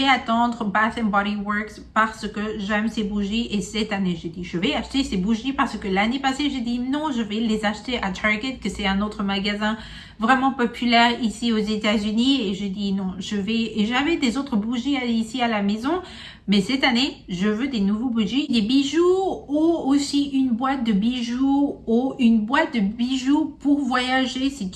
attendre Bath and Body Works parce que j'aime ces bougies. Et cette année, j'ai dit, je vais acheter ces bougies parce que l'année passée, j'ai dit non, je vais les acheter à Target, que c'est un autre magasin vraiment populaire ici aux États-Unis. Et je dis non, et j'avais des autres bougies ici à la maison. Mais cette année, je veux des nouveaux bougies, des bijoux ou aussi une boîte de bijoux ou une boîte de bijoux pour voyager. Si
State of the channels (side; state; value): both; identical; correlation 1.00